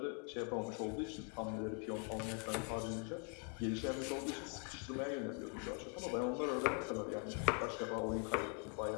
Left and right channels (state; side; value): quieter; right; 37.4 dB